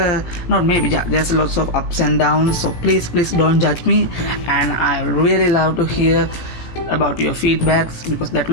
there's lots of ups and downs, so please don't judge me, and I really love to hear about your feedbacks, because that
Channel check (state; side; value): late; right; 17 ms